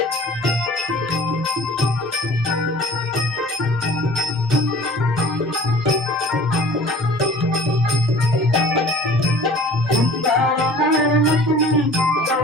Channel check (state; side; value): normal; both; correlation 0.46